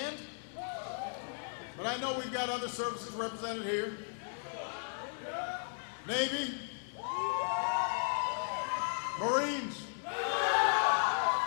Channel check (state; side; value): silent; right; digital silence